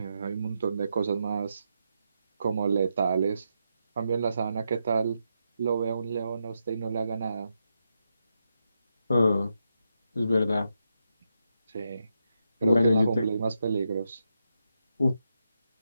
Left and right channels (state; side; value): inverted; both; correlation -0.84